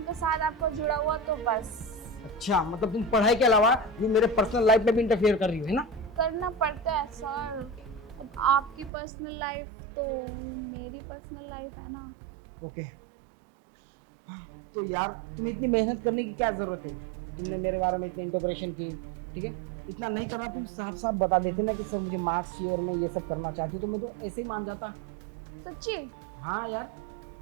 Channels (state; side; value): drops out; left; at 8.9 s